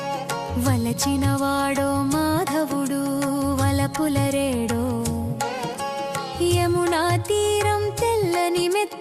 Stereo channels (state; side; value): identical; both; correlation 1.00